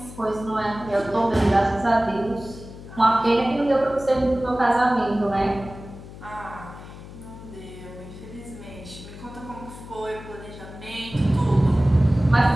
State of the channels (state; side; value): noise; left; hum, 15 dB below the sound